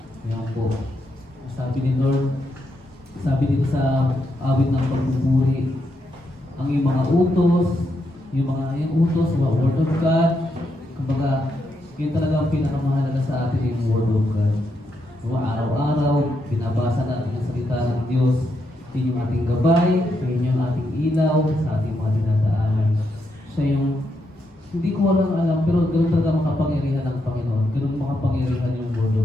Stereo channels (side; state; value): both; normal; correlation 0.81